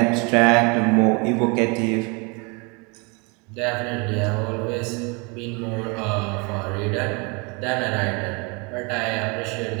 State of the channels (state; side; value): quieter; left; 30.3 dB